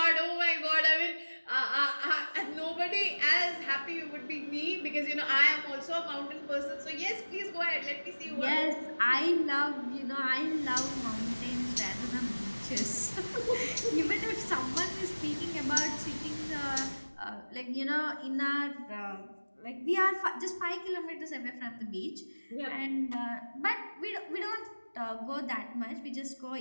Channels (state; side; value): inverted; both; correlation -1.00